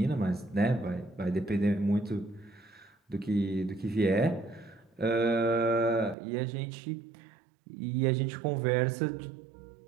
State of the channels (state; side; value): drops out; left; at 6.2 s